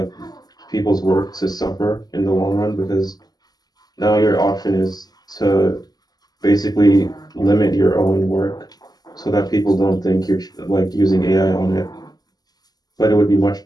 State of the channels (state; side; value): late; right; 0.19 ms